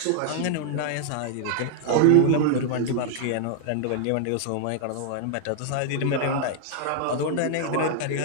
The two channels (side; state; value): both; different; correlation 0.00